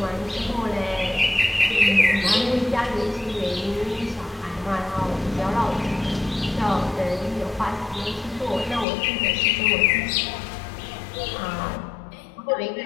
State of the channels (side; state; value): right; drops out; at 8.8 s